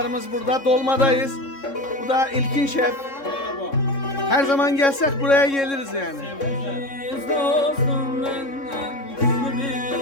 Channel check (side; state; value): right; late; 3.6 ms